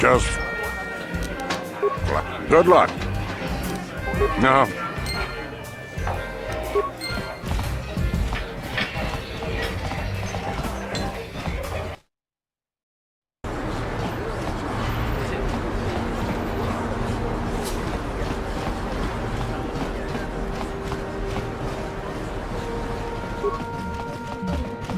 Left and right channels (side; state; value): both; identical; correlation 1.00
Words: good luck. No.